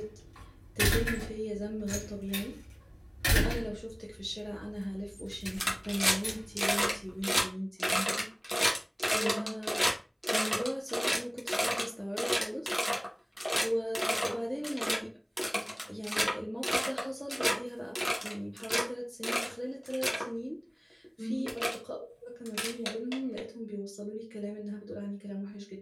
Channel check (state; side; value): identical; both; correlation 1.00